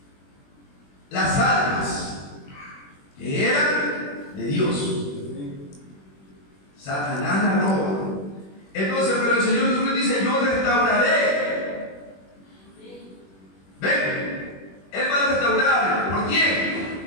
las almas que eran de Dios. Satanás la roba. Entonces, pero el Señor Jesucristo dice, yo restauraré. Ven, Él va a restaurar. ¿Por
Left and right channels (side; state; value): right; late; 21 ms